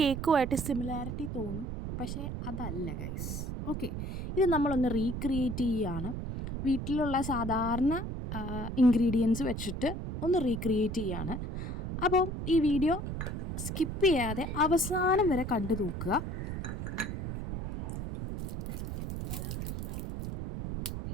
സിമിലാരിറ്റി തോന്നും, പക്ഷേ അതല്ല ഗൈസ്. ഓക്കെ, ഇത് നമ്മളൊന്ന് റീക്രിയേറ്റ് ചെയ്യുകയാണ്. വീട്ടിലുള്ള സാധാരണ ഇൻഗ്രീഡിയൻസ് വെച്ചിട്ട് ഒന്ന് റീക്രിയേറ്റ് ചെയ്യാണ്. അപ്പോൾ ഈ വീഡിയോ സ്കിപ്പ് ചെയ്യാതെ അവസാനം വരെ കണ്ടു നോക്കുക.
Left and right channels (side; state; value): right; noise; rumble, 4 dB below the sound